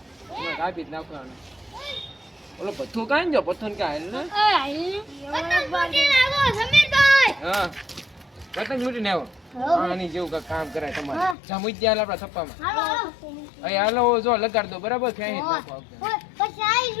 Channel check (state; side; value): drops out; right; at 11.4 s